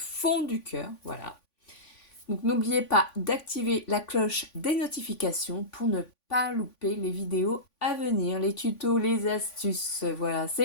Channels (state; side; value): late; right; 3.5 ms